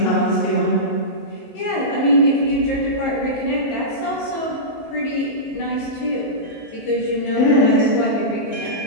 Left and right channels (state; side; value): late; right; 19 ms